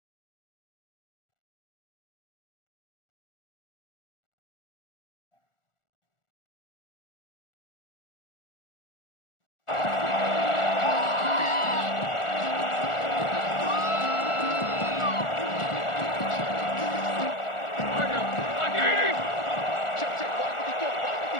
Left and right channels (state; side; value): late; right; 1.4 ms